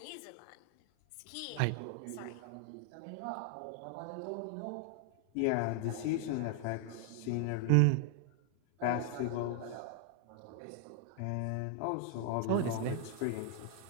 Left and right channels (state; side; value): different; both; correlation 0.00